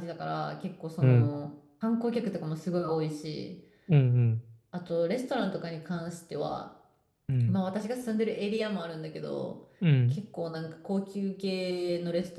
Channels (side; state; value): both; identical; correlation 1.00